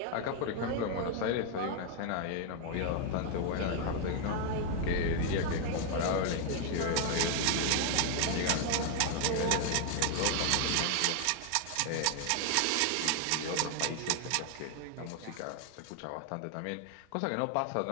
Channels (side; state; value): both; different; correlation 0.00